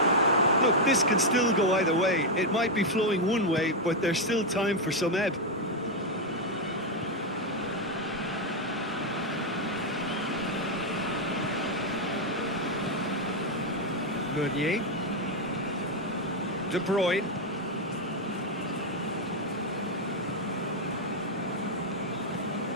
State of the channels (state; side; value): normal; both; correlation 0.02